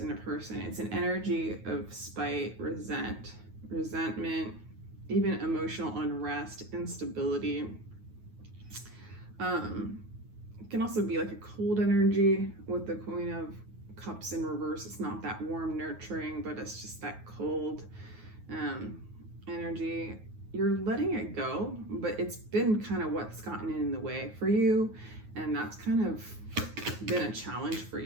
in a person. It's an energy of spite, resentment, even emotional unrest, instability. It can also be like a cold energy with the Queen of Cups in reverse. It's not that warm, nurturing, but it's just that cold energy. You're letting it go, but it's been kind of what's gotten in the way for you, and that's kind of been a challenge for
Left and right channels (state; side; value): late; left; 9.4 ms